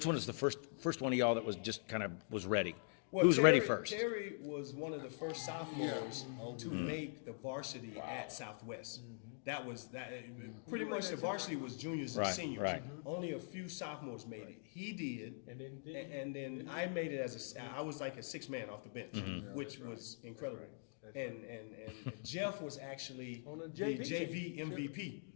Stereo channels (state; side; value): silent; right; digital silence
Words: one is the first one of y'all that was just kind of was ready? Well, Who's ready first? Terry was one of the first sophomores to make the varsity at Southwest. That was that. Pretty much the varsity was juniors and Right, seniors. right. Only a few sophomores made it. He did, And then I made it as I was like a 6-man off the bench, which was incredible. And Jeff was actually On the the JV JV MVP.